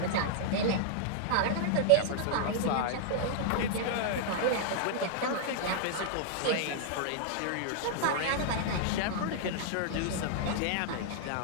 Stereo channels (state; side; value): different; both; correlation -0.01